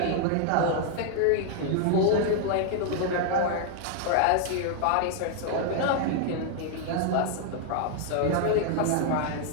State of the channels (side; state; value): both; different; correlation 0.00